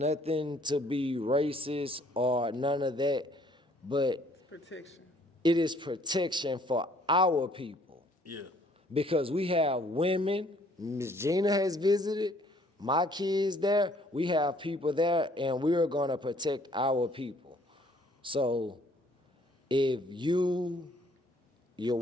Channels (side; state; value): both; normal; correlation 0.61